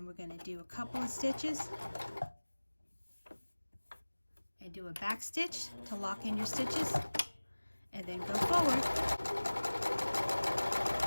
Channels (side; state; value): both; inverted; correlation -1.00